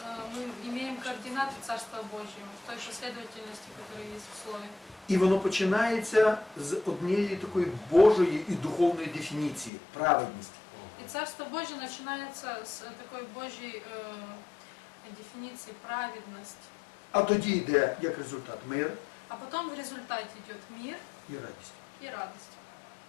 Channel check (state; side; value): drops out; right; at 9.7 s